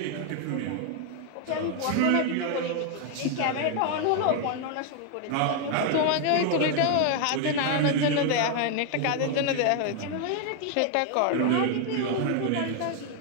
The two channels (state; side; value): different; both; correlation 0.00